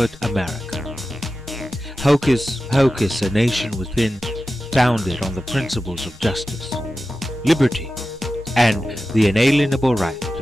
America. Hocus pocus, a nation within, founded on the principles of justice, liberty, and the inalienable right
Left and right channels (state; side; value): normal; both; correlation 0.93